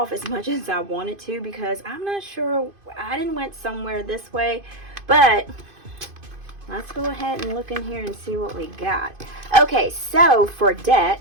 as much as I wanted to because I'm not sure. I didn't went somewhere this way, but let's go ahead and look in here and see what we got. Okay, so for debt,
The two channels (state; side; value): late; left; 2.5 ms